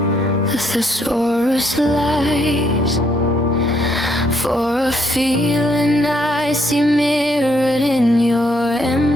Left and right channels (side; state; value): both; normal; correlation 0.71